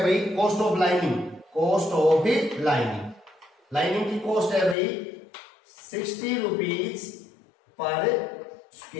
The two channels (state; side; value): drops out; right; at 4.8 s